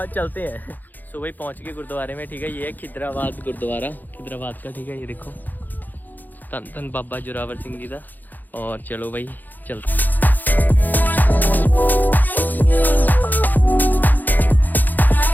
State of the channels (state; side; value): late; right; 0.085 ms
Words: चलते हैं। सो भाई पहुँच गए गुरुद्वारे में, ठीक है। ये है खिदराबाद गुरुद्वारा, खिदराबाद का, ठीक है। ये देखो धन धन बाबा जोरावर सिंह जी का। और चलो भाई चलते।